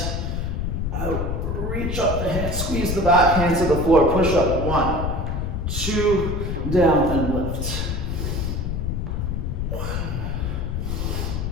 out, reach up the hands, squeeze the back, hands to the floor, push up, 1, 2, down and lift. 1,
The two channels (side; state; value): left; noise; rumble, 1 dB below the sound